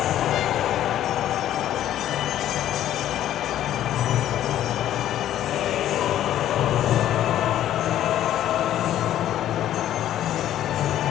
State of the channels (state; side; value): quieter; right; 12.0 dB